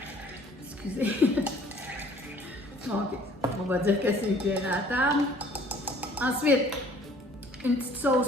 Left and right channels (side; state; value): both; normal; correlation 0.55